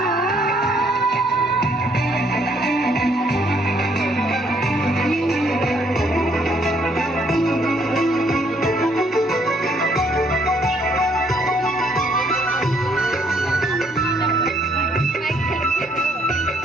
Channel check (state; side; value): normal; both; correlation 0.68